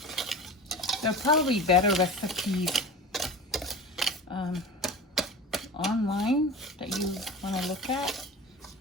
There are probably better recipes online that you want to look at.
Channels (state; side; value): normal; both; correlation 0.33